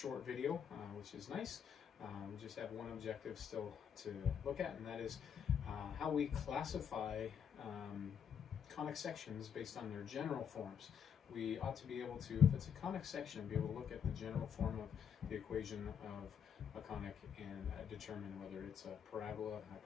video, which is nice. We just have one objective still to look at, and that is how we classify conic sections based on their general forms. We ought to be able to, if it's a conic section, be able to look at the general form of the equation of a conic and determine whether it's a parabola,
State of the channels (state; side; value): quieter; right; 7.9 dB